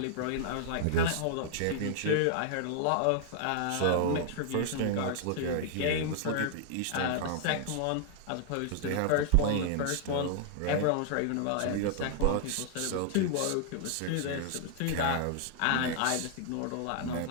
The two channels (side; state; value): both; different; correlation -0.01